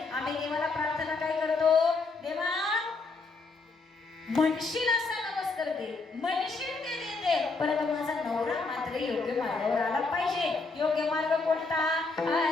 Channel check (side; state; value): right; quieter; 3.9 dB